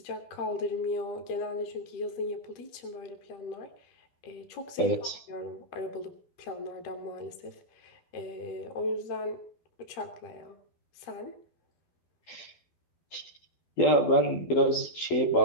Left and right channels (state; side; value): late; right; 12 ms